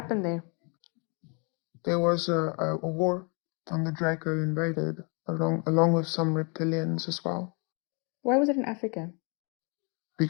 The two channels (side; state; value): right; quieter; 35.2 dB